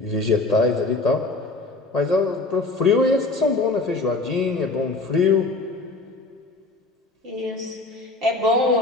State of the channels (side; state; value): right; quieter; 3.2 dB